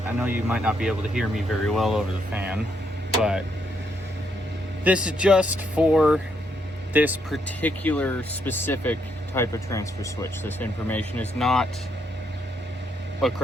I know you might not be able to hear me very well over the fan, but this is just for this particular specific type of transfer switch. This information is not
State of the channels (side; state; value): both; normal; correlation 0.75